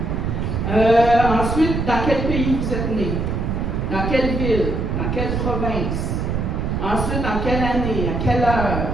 Ensuite, dans quel pays vous êtes né? Dans quelle ville? Dans quelle province? Ensuite, dans quelle année? À quelle heure?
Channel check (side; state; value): right; noise; rumble, 1 dB below the sound